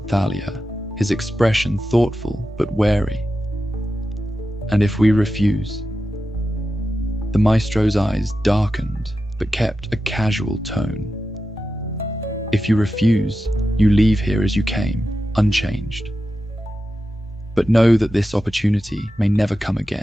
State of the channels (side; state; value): both; normal; correlation 0.91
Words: Thalia, his expression thoughtful but wary. And if we refuse? The Maestro's eyes darkened but kept a casual tone. If you refuse, you leave here as you came, unchanged. But know that this opportunity may never come